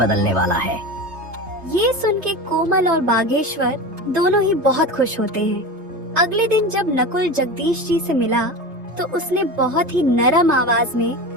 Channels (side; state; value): left; late; 3.2 ms